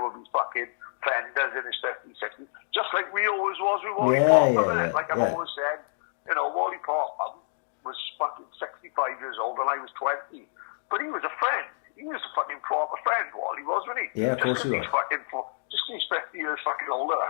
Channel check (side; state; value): right; silent; digital silence